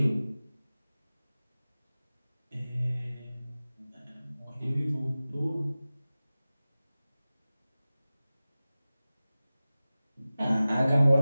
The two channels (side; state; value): both; inverted; correlation -0.97